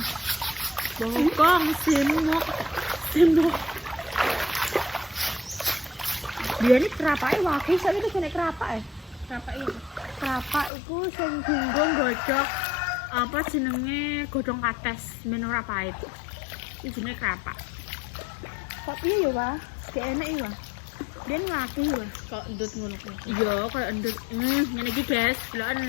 Bongkong, sendok. Dia ini kerapake wakil, saya itu jenis kerapak. Kerapak itu sing gunggung gojok apa jenenge godhong kates men ora pahit. Iki jenenge kerapak. Kok piye ya, Pak? Gak enak ya, Pak. Dia ngati ya. Kok endut ngono kuwi. Iya, koyo endut. Ngene iki, guys.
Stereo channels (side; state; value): right; drops out; at 10.7 s